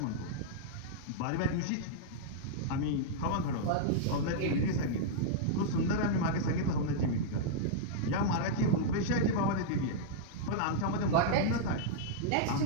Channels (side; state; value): both; different; correlation -0.02